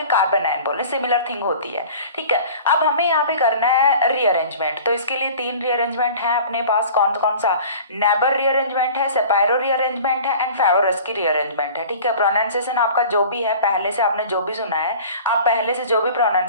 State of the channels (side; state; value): both; inverted; correlation -0.43